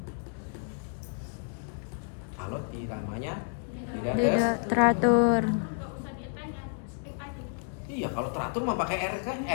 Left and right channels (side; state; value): right; silent; 58 dB below the other